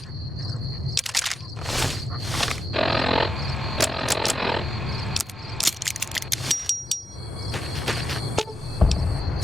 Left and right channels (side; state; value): both; normal; correlation 0.86